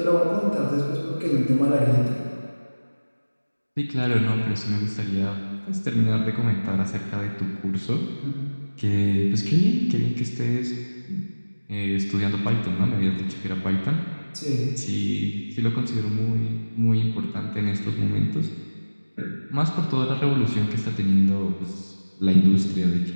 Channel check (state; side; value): inverted; both; correlation -1.00